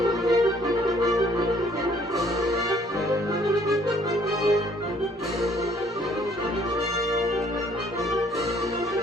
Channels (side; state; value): both; normal; correlation 0.61